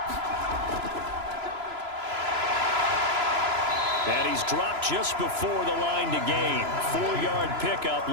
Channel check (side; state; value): left; late; 3.0 ms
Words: he's dropped just before the line to gain. 4-yard pickup